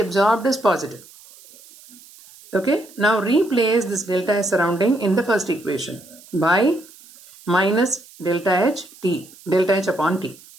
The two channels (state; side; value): noise; right; hiss, 23 dB below the sound